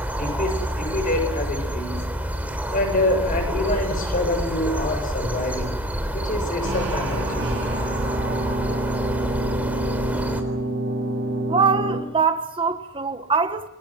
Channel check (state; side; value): normal; both; correlation 0.37